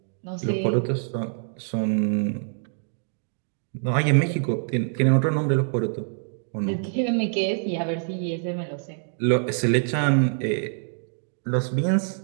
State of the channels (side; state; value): left; silent; digital silence